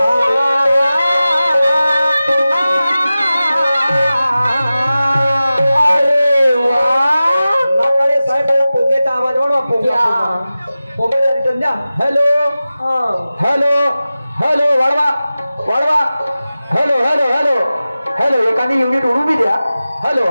hello hello hello वाढवा वाढवा hello hello hello hello एखादी युनिट उडू बी द्या हॅलो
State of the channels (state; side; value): inverted; both; correlation -0.95